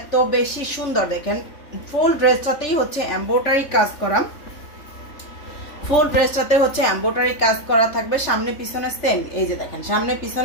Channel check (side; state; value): right; late; 3.6 ms